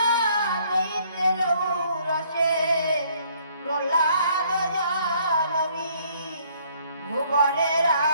দৈত্যের ঔরসে প্রহ্লাদ জনমী, ভুবনে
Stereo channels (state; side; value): inverted; both; correlation -0.63